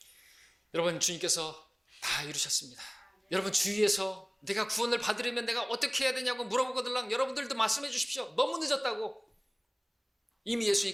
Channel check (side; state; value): both; identical; correlation 1.00